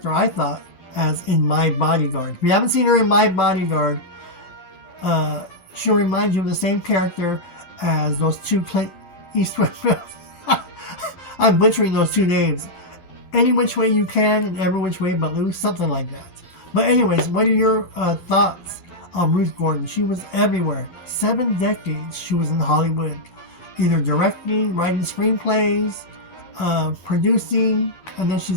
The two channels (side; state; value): right; late; 12 ms